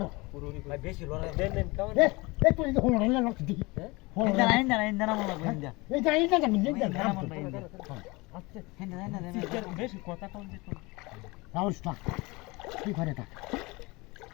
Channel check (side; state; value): right; quieter; 24.3 dB